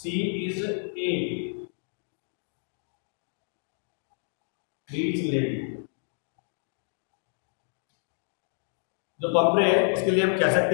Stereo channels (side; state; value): right; silent; digital silence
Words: इज ए रीच लेडी. जो पंपरे है उसके लिए हम कह